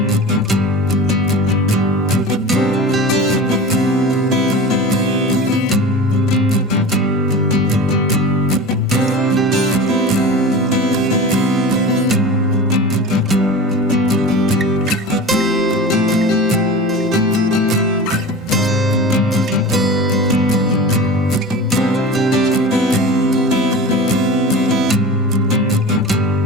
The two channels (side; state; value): both; normal; correlation 0.32